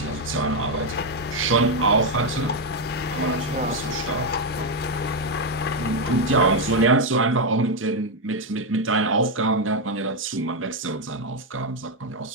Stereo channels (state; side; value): normal; both; correlation 0.03